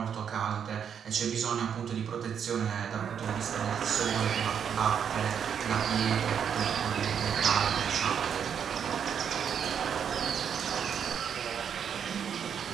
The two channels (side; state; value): left; quieter; 7.8 dB